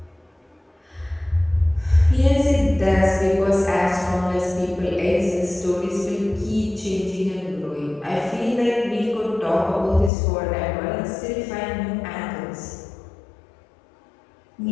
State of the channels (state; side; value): drops out; right; at 10.1 s